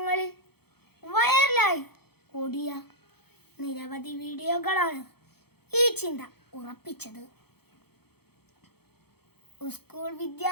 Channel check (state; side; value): late; right; 0.96 ms